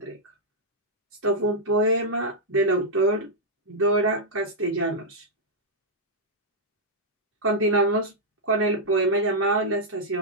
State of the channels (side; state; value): both; normal; correlation -0.07